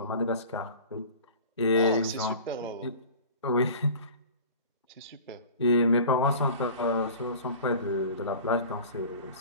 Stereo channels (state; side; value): inverted; both; correlation -0.40